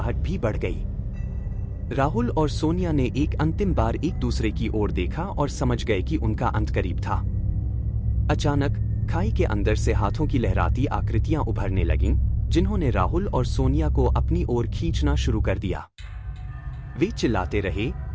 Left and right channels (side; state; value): both; identical; correlation 1.00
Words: भी बढ़ गई। राहुल और सोनिया ने एक अंतिम बार एक दूसरे की ओर देखा और समझ गए कि उनका अंत करीब था। अचानक खाई के अंदर से हाथों की लहराती आकृतियां उभरने लगीं, जिन्होंने राहुल और सोनिया को अपनी ओर खींचना शुरू कर दिया। वे चिल्लाते रहे,